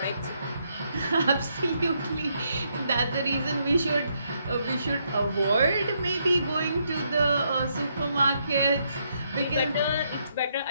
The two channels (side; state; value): both; inverted; correlation -0.76